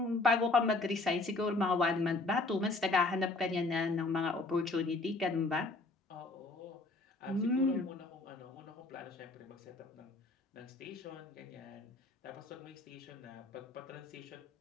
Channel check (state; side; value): quieter; right; 3.3 dB